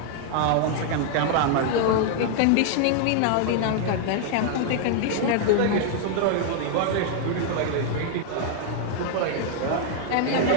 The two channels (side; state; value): both; different; correlation 0.00